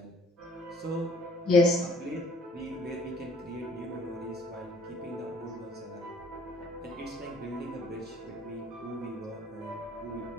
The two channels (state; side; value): normal; both; correlation 0.57